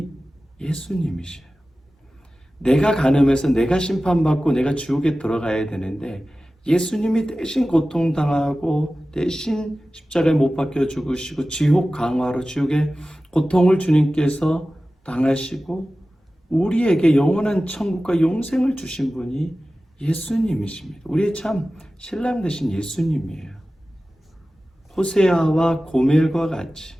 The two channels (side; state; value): both; normal; correlation 0.96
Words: 예수님이셔요. 내가 간음해서 내가 심판받고 내가 지옥에 들어가야 되는데 예수님이 대신 고통당하고 대신 십자가에 못 박혀 죽으시고 지옥 강화로 지옥에 고통을 주님께서 당하시고 우리에게 영원한 천국과 영생을 주신 분이 예수님이십니다. 우리의 참 신랑 되신 예수님이에요. 호세아와 고멜과 같이